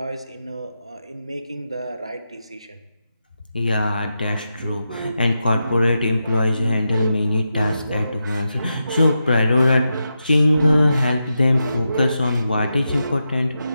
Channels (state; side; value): inverted; both; correlation -0.87